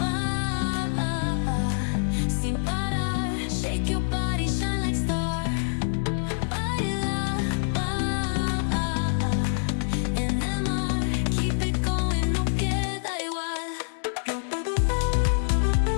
sin parar, shake your body, shine like stars.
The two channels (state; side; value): silent; right; digital silence